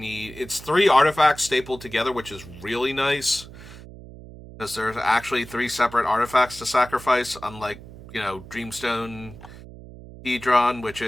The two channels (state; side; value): noise; right; hum, 16 dB below the sound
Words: It's 3 artifacts stapled together, which is really nice because there's actually 3 separate artifacts to sacrifice, unlike Dreamstone Hedron, which